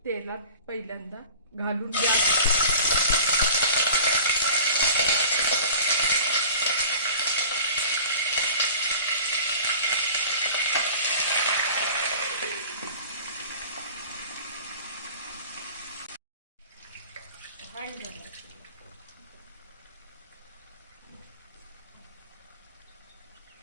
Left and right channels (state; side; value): inverted; both; correlation -0.43